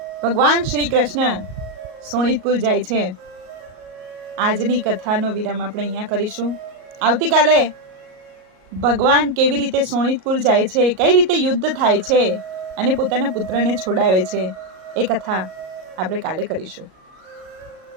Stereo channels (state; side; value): late; left; 38 ms